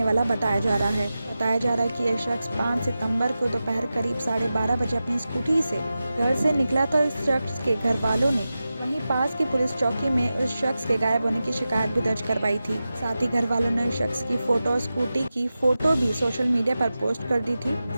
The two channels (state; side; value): inverted; both; correlation -0.93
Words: वाला बताया जा रहा है। बताया जा रहा है कि यह शख्स 5 सितंबर को दोपहर करीब 12:30 बजे अपनी स्कूटी से घर से निकला था। इस शख्स के घर वालों ने वहीं पास की पुलिस चौकी में उस शख्स के गायब होने की शिकायत भी दर्ज करवाई थी। साथ ही घर वालों ने उस शख्स की फोटो और स्कूटी की फोटो भी सोशल मीडिया पर पोस्ट कर दी थी।